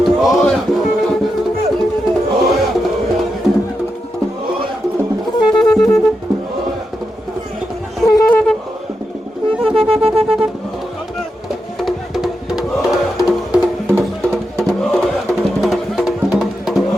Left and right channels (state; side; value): normal; both; correlation 0.87